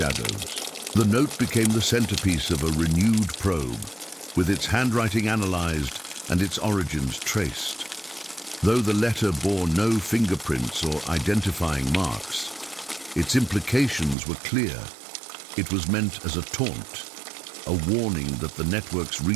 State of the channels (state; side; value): drops out; left; at 14.2 s